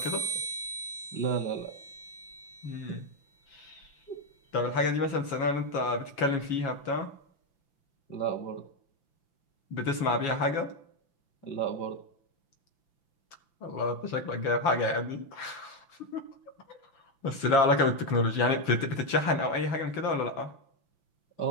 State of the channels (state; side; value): late; right; 5.9 ms